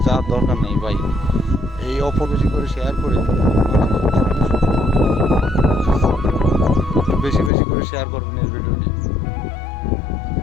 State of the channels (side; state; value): right; drops out; at 7.5 s